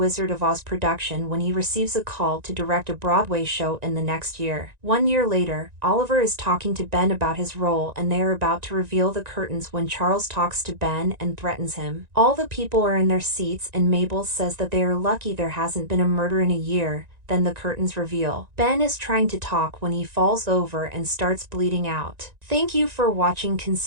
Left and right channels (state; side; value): late; left; 1.9 ms